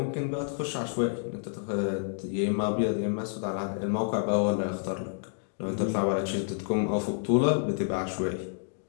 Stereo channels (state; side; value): silent; right; digital silence